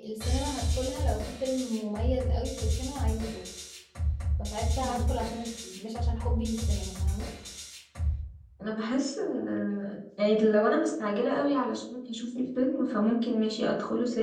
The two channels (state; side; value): identical; both; correlation 1.00